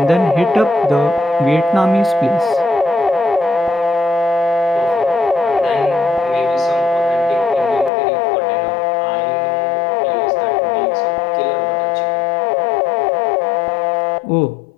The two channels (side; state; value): right; drops out; at 7.9 s